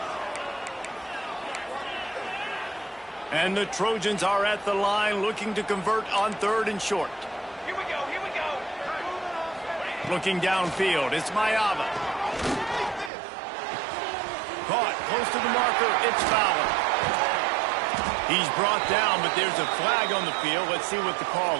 And the Trojans are at the line looking to convert on 3rd and short. Here we go, here we go. Looking downfield, it's Mayava. Caught close to the marker, it's Fowler. He's brought down, but there's a flag on the field. Let's see what the call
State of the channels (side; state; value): left; drops out; at 13.1 s